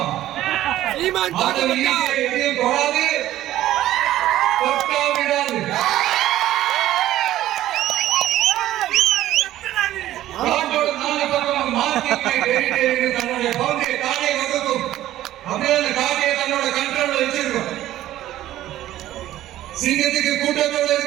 எதையும் தொடாது, தொட்டா விடாது. காட்டோட நாலு பக்கம் தன்னுடைய பகுதியை காடை வகுக்கும். அப்படியே அந்த காடையை தன்னோட கண்ட்ரோல்ல வச்சிருக்கும். சிங்கத்துக்கு கூட்டத்தோட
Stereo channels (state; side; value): quieter; left; 13.9 dB